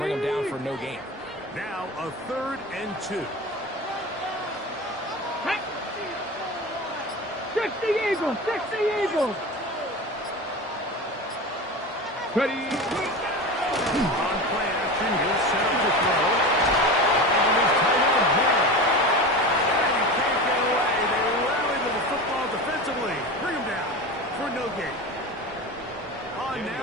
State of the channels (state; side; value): normal; both; correlation 0.28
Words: him down for no gain. Now a 3rd and 2. Fix the Eagles! Fix the Eagles! Ready? On play action, he'll set up the throw. And his tight end here. And he can't get away. They rally to the football defensively. Bring him down for no gain. On